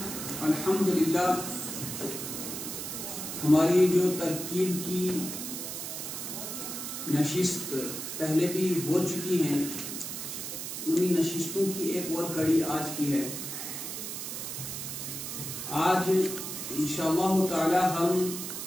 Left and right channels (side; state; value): right; noise; hiss, 6 dB below the sound